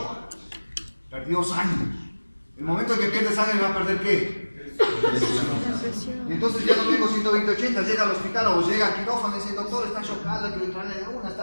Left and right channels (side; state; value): both; inverted; correlation -1.00